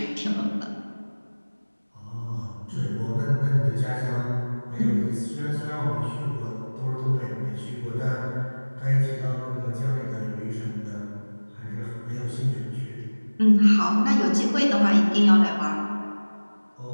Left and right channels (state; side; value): inverted; both; correlation -1.00